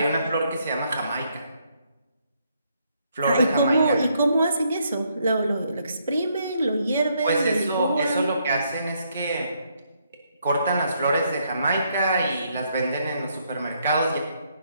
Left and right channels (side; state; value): both; inverted; correlation -0.73